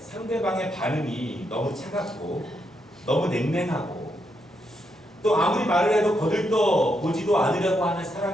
반응이 너무 차갑고 너무 냉랭하고 또 아무리 말을 해도 거들떠 보지도 않으려고 하는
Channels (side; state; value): both; normal; correlation 0.80